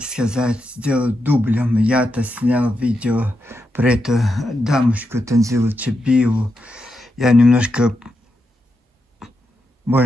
сказать, сделать дублем. Я-то снял видео про эту дамочку Танзилу Чебиеву. Я немножко,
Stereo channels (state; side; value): normal; both; correlation 0.85